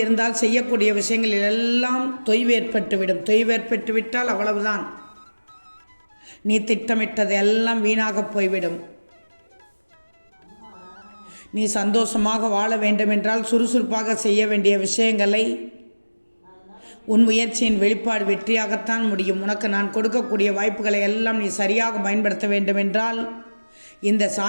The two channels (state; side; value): inverted; both; correlation -1.00